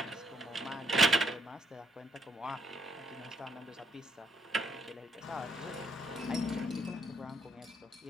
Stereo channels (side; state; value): both; normal; correlation 0.72